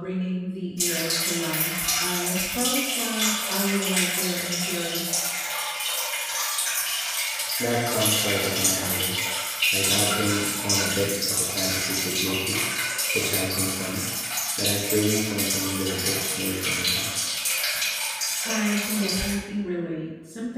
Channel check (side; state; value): both; identical; correlation 1.00